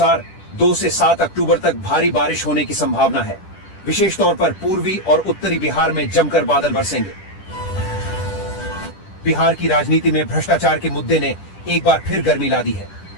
2 से 7 अक्टूबर तक भारी बारिश होने की संभावना है। विशेष तौर पर पूर्वी और उत्तरी बिहार में जमकर बादल बरसेंगे। बिहार की राजनीति में भ्रष्टाचार के मुद्दे ने एक बार फिर गर्मी ला दी है।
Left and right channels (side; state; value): right; late; 10 ms